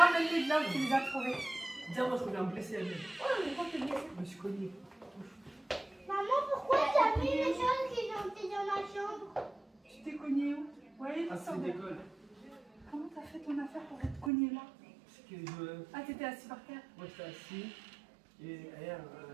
de là où tu les as trouvés. Tiens, moi je reviens me blesser à lui. Oh, mais pourquoi tu me blesses? Je me suis cogné. Maman, pourquoi t'as mis les choses qui ont été dans la chambre? Tu t'es cogné où? Ouais, Ah, c'est d'école. Comment t'as fait ton affaire pour être cogné là? Parce que je. Ah, t'étais assis par terre. Moi j'étais assis. Et elle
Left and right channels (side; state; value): left; drops out; at 14.3 s